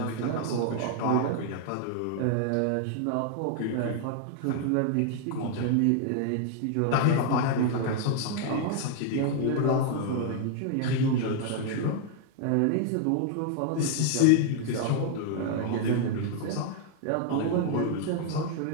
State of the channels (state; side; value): different; both; correlation 0.00